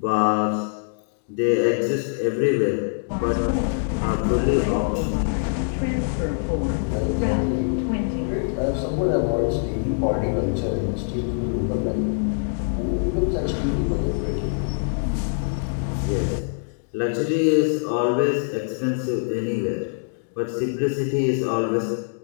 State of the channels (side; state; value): right; silent; digital silence